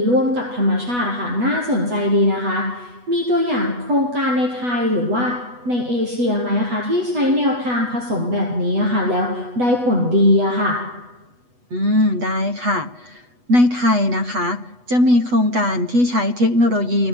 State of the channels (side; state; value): left; late; 8.1 ms